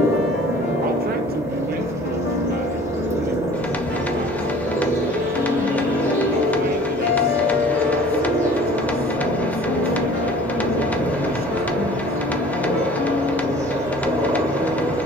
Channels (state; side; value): normal; both; correlation 0.48